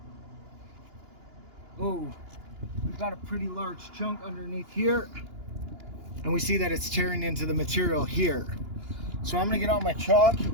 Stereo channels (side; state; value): left; late; 2.9 ms